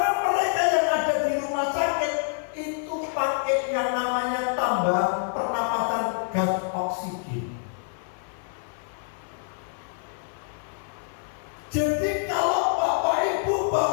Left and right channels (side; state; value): right; silent; 60 dB below the other